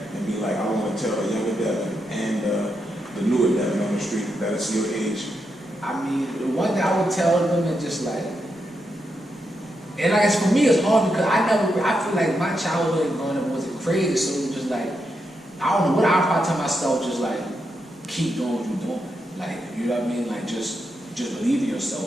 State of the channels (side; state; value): both; normal; correlation 0.84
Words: and be like, I want to tell a younger Devin and the newer Devin on the street that's your age. I mean, the one thing I would tell them is just like, and like for me it's hard because I feel like my childhood growing up wasn't crazy, so it was just like, I don't know what I probably tell myself, just like, keep doing what you're doing. Like, you know what I mean? Like, just believe in